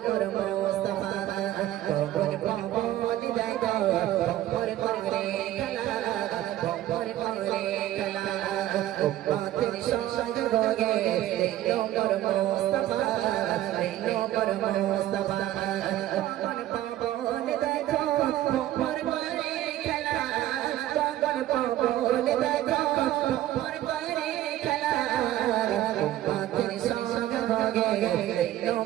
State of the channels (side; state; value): left; quieter; 13.7 dB